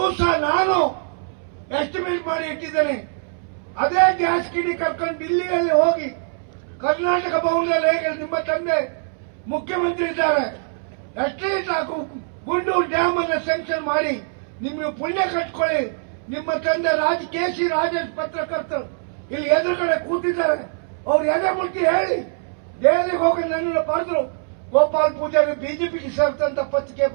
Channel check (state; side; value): silent; left; 64 dB below the other